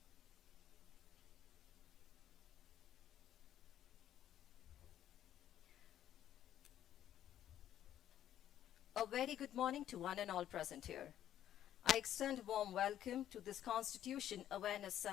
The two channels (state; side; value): quieter; right; 11.3 dB